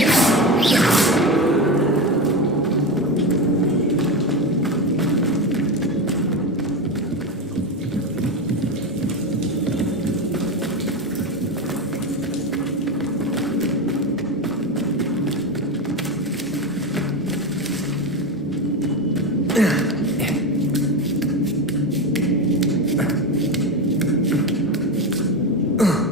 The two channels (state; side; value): normal; both; correlation 0.18